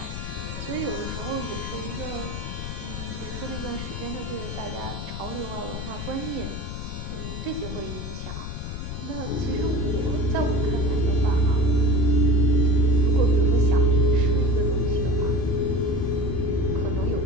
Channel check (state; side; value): noise; left; rumble, 7 dB below the sound